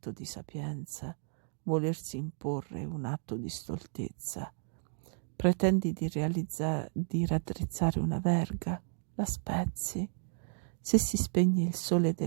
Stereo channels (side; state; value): left; silent; 56 dB below the other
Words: di sapienza, volersi imporre è un atto di stoltezza. Pretendi di raddrizzare una verga, la spezzi. Se si spegne il sole